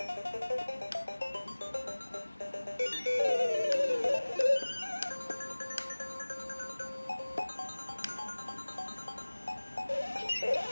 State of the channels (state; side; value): inverted; both; correlation -1.00